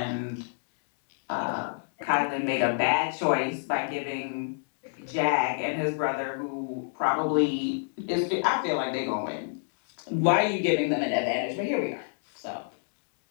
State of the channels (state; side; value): silent; right; 59 dB below the other